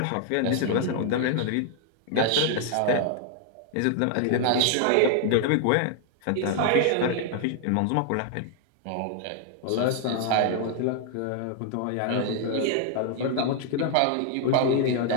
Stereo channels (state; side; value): different; both; correlation 0.00